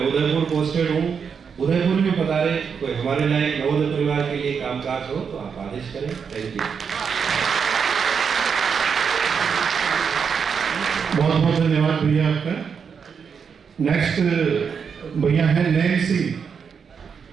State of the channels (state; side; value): quieter; left; 6.4 dB